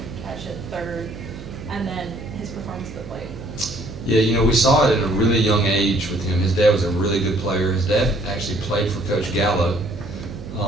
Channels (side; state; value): right; noise; hum, 12 dB below the sound